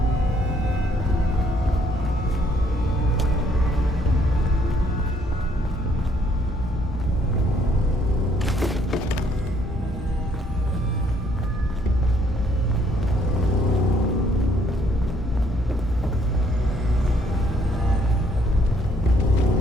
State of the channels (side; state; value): both; normal; correlation 0.65